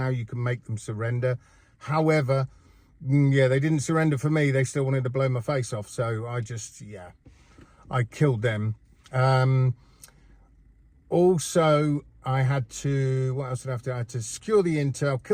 you can make them surrender. However, yeah, they didn't surrender for me. They still wanted to blow my face off. So I killed them. Also, I had to, what else did I have to do? I had to secure the intel,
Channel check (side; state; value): both; identical; correlation 1.00